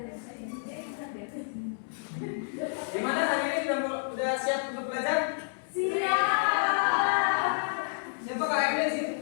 sini. Gimana hari ini udah siap untuk belajar? Siap. Siapa Kak Emil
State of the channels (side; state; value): right; silent; 58 dB below the other